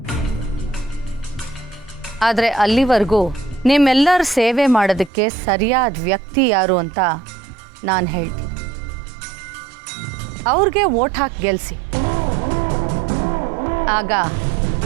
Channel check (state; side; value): drops out; left; at 5.1 s